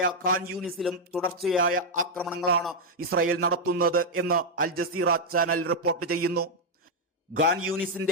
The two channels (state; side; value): normal; both; correlation 0.00